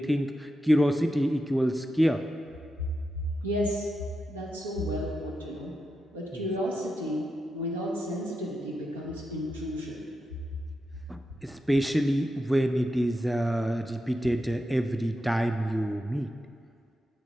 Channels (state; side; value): normal; both; correlation 0.87